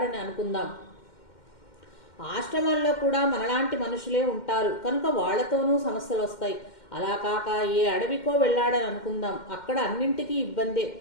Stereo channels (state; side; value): late; right; 2.1 ms